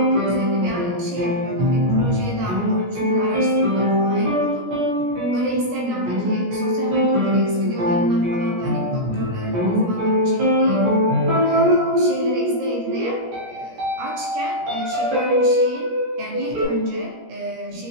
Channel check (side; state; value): left; late; 17 ms